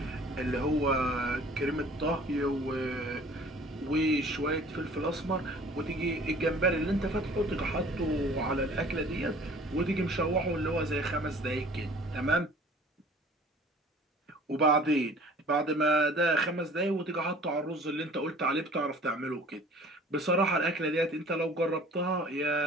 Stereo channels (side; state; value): both; normal; correlation 0.49